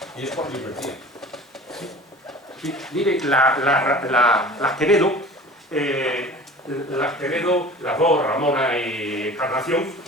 y es cuando invertían. Sí, mire, las Quevedo, las dos, Ramona y Encarnación,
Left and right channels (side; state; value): both; normal; correlation 0.40